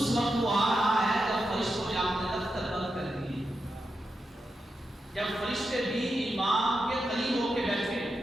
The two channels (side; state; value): both; normal; correlation 0.88